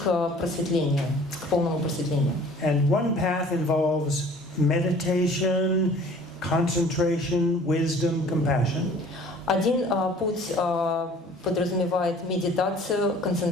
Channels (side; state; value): both; normal; correlation 0.50